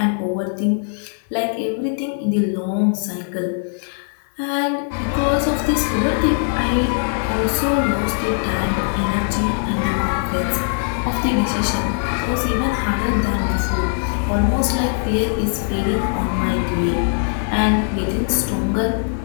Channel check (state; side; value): silent; right; digital silence